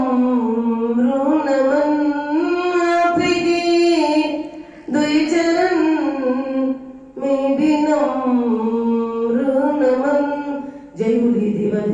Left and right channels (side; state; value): both; identical; correlation 1.00